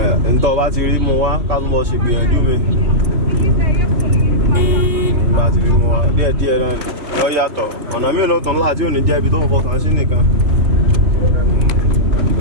ento ba ti ri mu wa ka tun mo se gbiyanju mi ba ti ri mu wa díẹ̀ díẹ̀ na yo yàtọ̀ ọ̀nà mi lo ton la ti o ni je ibi to fọkàn sí nìkan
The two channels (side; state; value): left; late; 3.3 ms